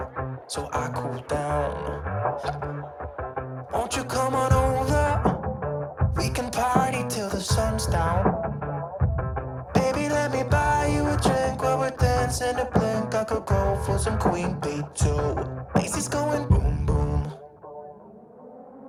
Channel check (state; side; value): identical; both; correlation 1.00